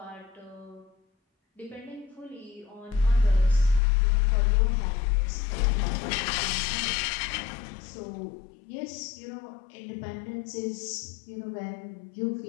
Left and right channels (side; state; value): right; drops out; at 3.8 s